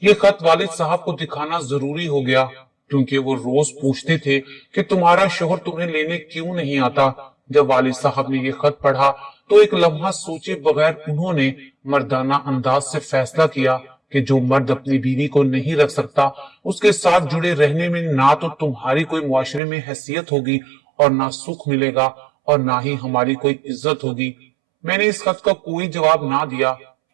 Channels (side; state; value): left; drops out; at 19.6 s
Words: ये खत वालिद साहब को दिखाना जरूरी हो गया क्योंकि वो रोज पूछते थे कि तुम्हारा शोहर तुम्हें लेने क्यों नहीं आता। जब वालिद साहब ने ये खत पढ़ा तो एक लम्हा सोचे बगैर उन्होंने मर्दाना अंदाज से फैसला किया कि जो मर्द अपनी बीवी को नहीं रख सकता उसके साथ जुड़े रहने में ना तो तुम्हारी कोई मुआशरे में हैसियत होगी और ना सुख मिलेगा और ना ही हमारी कोई इज्जत होगी। मैंने इस खत का कोई जवाब ना दिया।